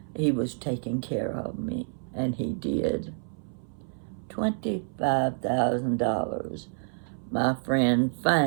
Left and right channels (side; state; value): left; silent; 59 dB below the other